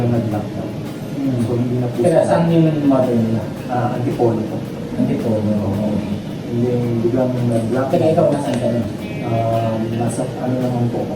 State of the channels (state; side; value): identical; both; correlation 1.00